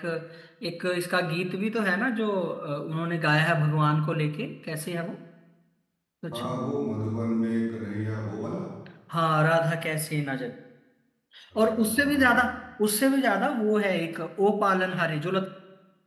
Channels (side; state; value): both; identical; correlation 1.00